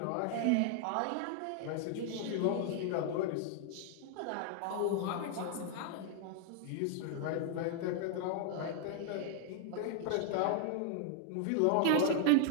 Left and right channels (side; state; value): both; different; correlation 0.00